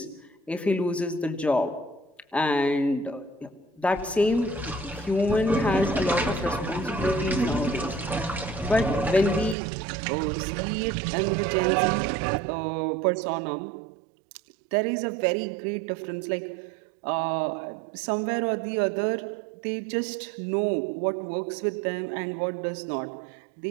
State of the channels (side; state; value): left; drops out; at 9.6 s